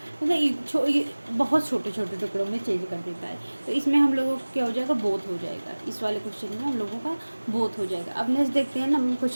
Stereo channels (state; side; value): inverted; both; correlation -1.00